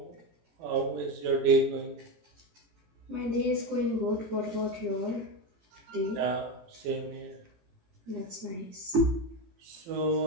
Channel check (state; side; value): late; left; 18 ms